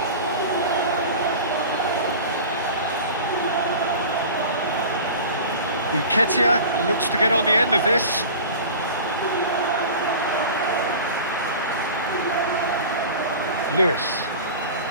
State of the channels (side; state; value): both; inverted; correlation -0.36